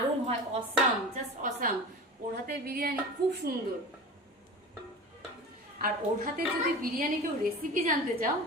হয়, অসাম, জাস্ট অসাম। ওর হাতের বিরিয়ানি খুব সুন্দর। আর ওর হাতে যদি বিরিয়ানি কেউ রেসিপি জানতে চাও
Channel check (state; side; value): normal; both; correlation 0.34